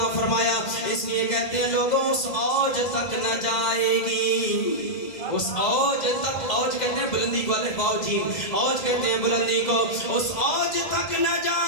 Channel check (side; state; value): right; late; 2.0 ms